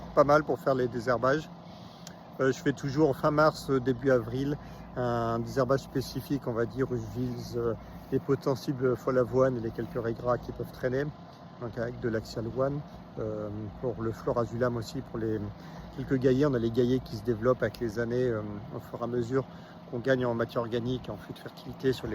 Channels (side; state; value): both; identical; correlation 1.00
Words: pas mal pour faire les désherbages. Je fais toujours fin mars, début avril, un désherbage spécifique, on va dire, où je vise les potentiels folle avoine et les quelques raies qui peuvent traîner, donc avec de l'axial one. Pour le florazulam aussi, pour les quelques gaillets, on a les gaillets qui se développent avec les années, au fur et à mesure qu'on gagne en matière organique et en flux de fertilité sur